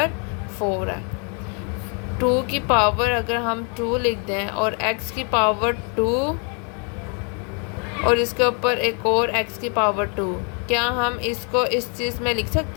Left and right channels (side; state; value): right; quieter; 38.3 dB